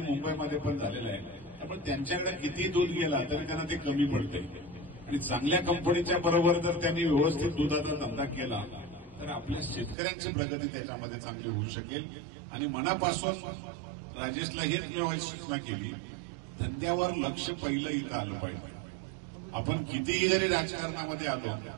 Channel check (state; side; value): drops out; left; at 10.0 s